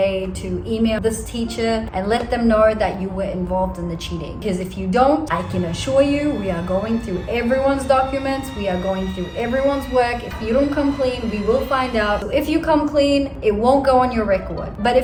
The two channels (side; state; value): both; identical; correlation 1.00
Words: to email this teacher and let them know that you were involved in the cheating. Because if you don't, I can assure you, we are going through everyone's documents. We are going through everyone's work. If you don't come clean, we will find out. So if you come clean, it won't go on your record. But